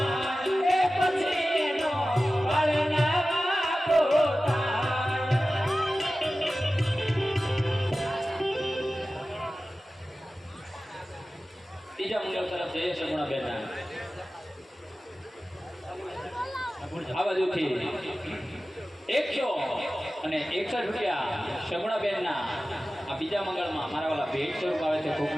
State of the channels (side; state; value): both; normal; correlation 0.95